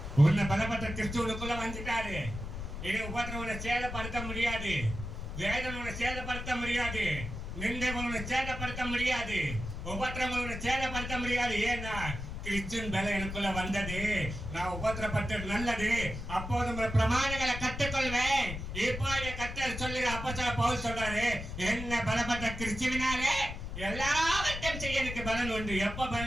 உன்னை பலப்பட்ட கிறிஸ்துவுக்குள்ள வந்துட்டாரு. இனி உபத்திரம் உன்னை சேதப்படுத்த முடியாது, வேதனை உன்னை சேதப்படுத்த முடியாது, நிந்தைகள் உன்னை சேதப்படுத்த முடியாது, உபத்திரம் உன்னை சேதப்படுத்த முடியாது. ஏன்னா கிறிஸ்துவின் பலம் எனக்குள்ள வந்தது. நான் உபத்திரப்பட்டது நல்லது, அப்போது உங்கள் பிரமாணங்களை கற்றுக்கொள்வேன். இப்போ கர்த்தர் சொல்லுற அப்போஸ்தலர் பவுல் சொல்றாரு, என்ன பலப்பட்ட கிறிஸ்துவினாலே எல்லாவற்றையும் செய்ய எனக்கு பலன் உண்டு. எப்ப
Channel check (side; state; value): left; noise; rumble, 7 dB below the sound